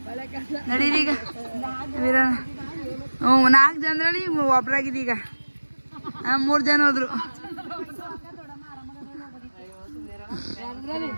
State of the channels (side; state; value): both; inverted; correlation -1.00